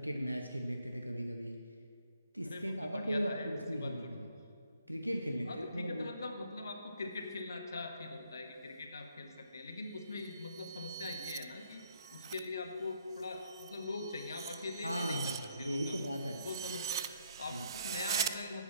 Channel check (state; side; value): inverted; both; correlation -0.70